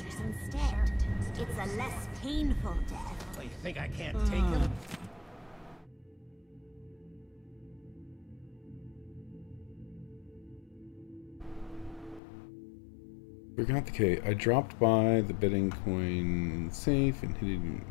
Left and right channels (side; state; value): right; drops out; at 12.2 s